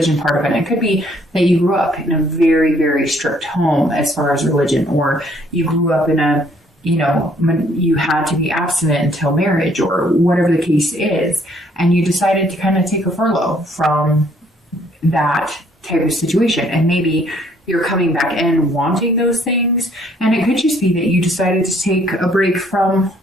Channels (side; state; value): both; normal; correlation 0.64